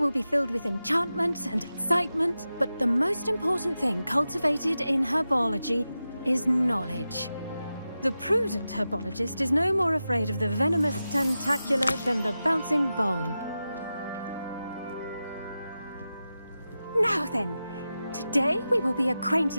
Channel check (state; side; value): inverted; both; correlation -0.92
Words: be filled with enchantment and excitement, but the most important thing cultivated in herbology is knowledge. The prudent herbologist is no more afraid of the venomous tentacula than the bouncing bulb. Now then, today we will be